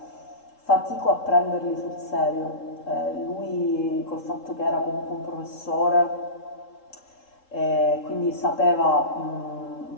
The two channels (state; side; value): late; right; 3.8 ms